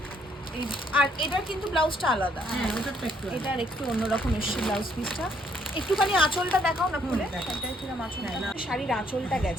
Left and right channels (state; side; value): normal; both; correlation 0.68